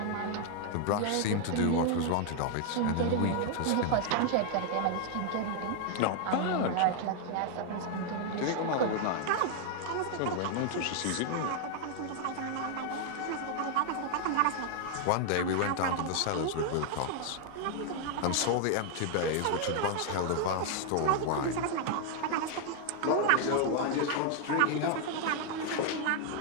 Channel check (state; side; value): different; both; correlation 0.00